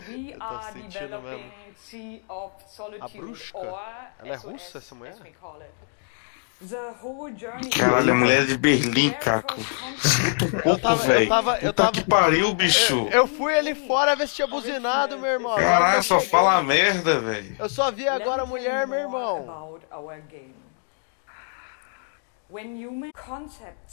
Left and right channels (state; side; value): silent; right; 58 dB below the other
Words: we are developing Sea of Solitude, or ela é russa, essa mulher? The whole journey. Caralho, a mulher de Berlim, Caco. Eu tava que pariu, bicho. Eu fui ali fora ver se tinha buzinado, meu irmão. Caralho, só fala merda, velho. Eu só vi agora a mulher, meu irmão. When human concept